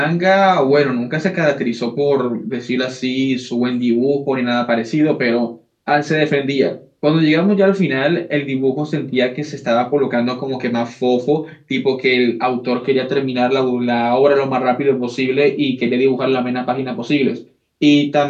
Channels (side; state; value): both; identical; correlation 1.00